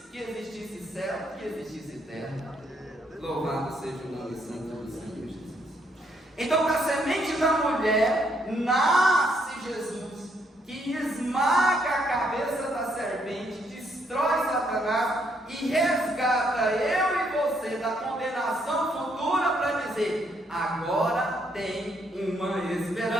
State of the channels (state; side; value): normal; both; correlation 0.72